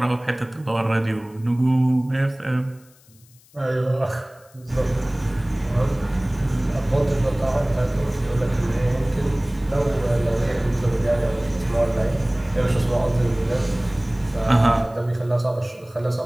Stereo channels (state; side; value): noise; left; hiss, 28 dB below the sound